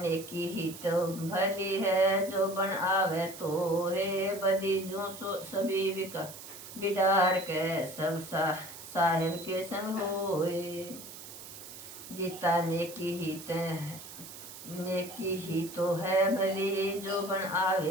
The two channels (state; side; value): noise; right; hiss, 14 dB below the sound